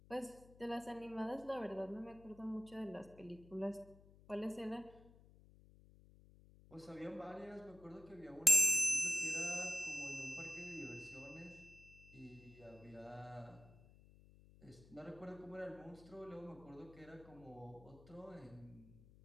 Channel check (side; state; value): left; noise; hum, 22 dB below the sound